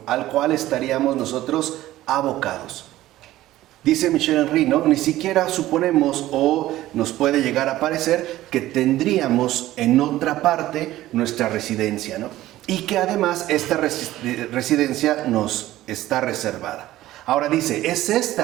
al cual estaríamos nosotros abocados. Dice Michel Henry, ¿no?, ni siquiera suponemos o nos puede llegar a parecer que tendríamos en otra parte nuestra residencia, ¿no?, y que además esta residencia nos está reservada. Ahora dice, es esta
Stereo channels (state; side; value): quieter; left; 15.2 dB